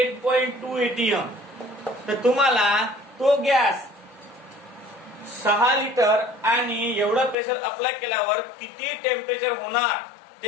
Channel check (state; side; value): drops out; right; at 7.4 s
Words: atm. तर तुम्हाला तो गॅस 6 लिटर आणि एवढं प्रेशर अप्लाय केल्यावर किती टेम्परेचर होणार